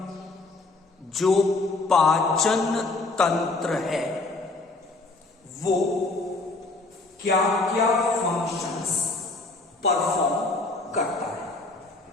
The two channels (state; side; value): quieter; right; 3.4 dB